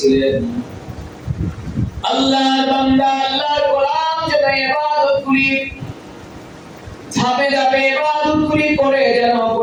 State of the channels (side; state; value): both; identical; correlation 1.00